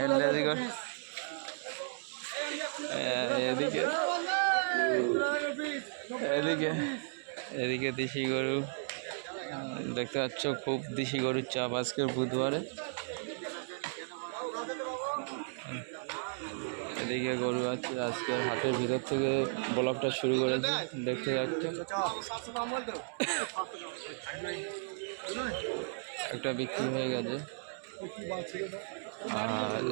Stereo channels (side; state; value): left; silent; digital silence